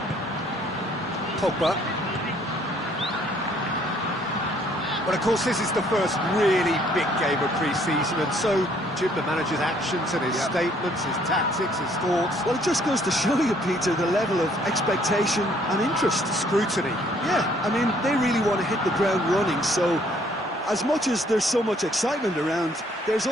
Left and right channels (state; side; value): normal; both; correlation 0.63